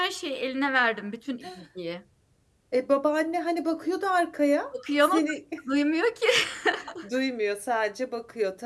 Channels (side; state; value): both; identical; correlation 1.00